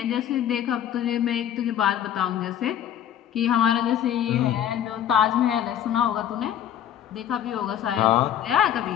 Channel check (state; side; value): quieter; right; 10.3 dB